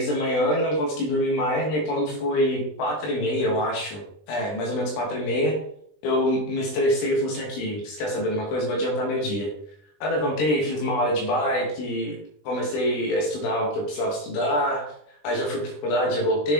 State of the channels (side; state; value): right; late; 20 ms